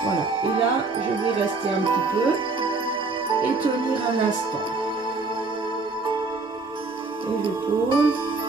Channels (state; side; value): quieter; left; 3.8 dB